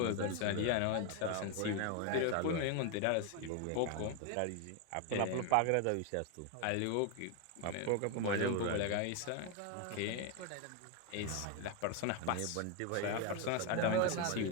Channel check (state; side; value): different; both; correlation 0.01